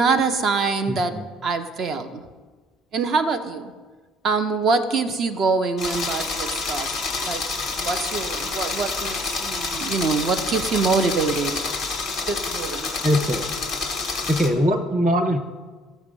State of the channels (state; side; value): normal; both; correlation 0.59